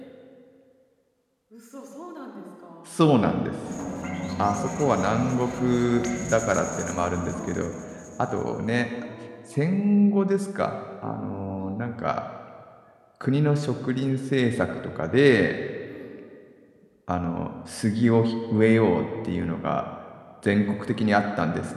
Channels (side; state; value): both; identical; correlation 1.00